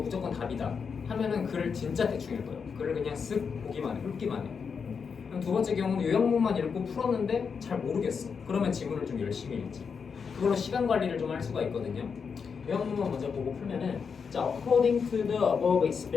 답이다 하면은 글을 진짜 대충 읽어요. 글을 그냥 쓱 보기만 해, 훑기만 해. 그럼 두 번째 경우는 요약문만 읽고 풀었는데 잘 모르겠어. 그러면 지문을 좀 열심히 읽지. 그걸로 시간 관리를 좀 할 수가 있거든요. 요약문만 먼저 보고 풀면은, 자, according to the above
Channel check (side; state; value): right; quieter; 6.0 dB